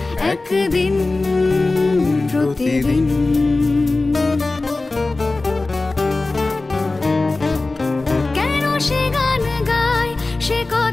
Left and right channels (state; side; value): quieter; right; 3.3 dB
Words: একদিন প্রতিদিন। কেন সে গান গায় সে